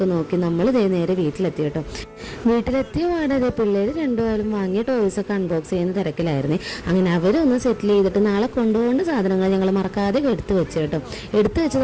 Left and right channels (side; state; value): both; identical; correlation 1.00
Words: നോക്കി നമ്മൾ നേരെ വീട്ടിലെത്തി കേട്ടോ. വീട്ടിലെത്തിയ പാടെ പിള്ളേർ രണ്ടുപേരും വാങ്ങിയ ടോയ്സൊക്കെ അൺബോക്സ് ചെയ്യുന്ന തിരക്കിലായിരുന്നു. അങ്ങനെ അവരൊന്ന് സെറ്റിൽ ചെയ്തിട്ട് നാളെ കൊണ്ടുപോകേണ്ട സാധനങ്ങൾ ഞങ്ങൾ മറക്കാതെ എടുത്തു വെച്ചു കേട്ടോ. എടുത്തു വെച്ചത്